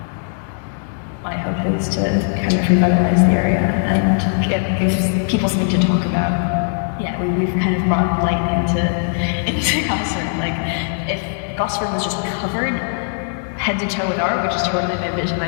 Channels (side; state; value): right; silent; 66 dB below the other